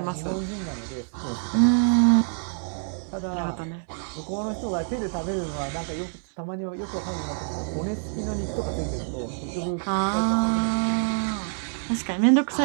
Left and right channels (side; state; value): left; silent; 61 dB below the other